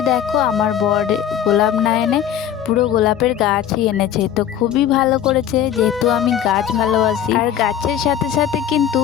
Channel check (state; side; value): quieter; right; 9.8 dB